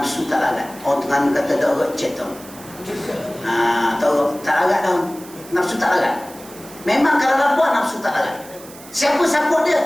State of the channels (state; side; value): noise; right; hiss, 19 dB below the sound